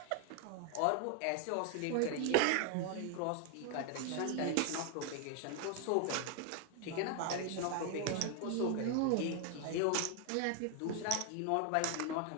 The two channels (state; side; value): different; both; correlation 0.01